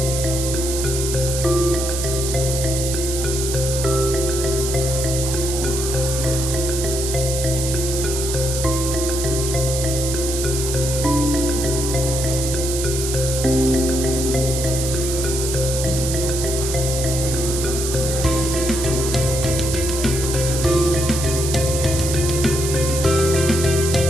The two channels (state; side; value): noise; right; hiss, 4 dB below the sound